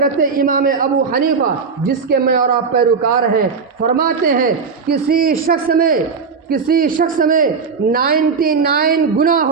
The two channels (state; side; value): quieter; left; 5.3 dB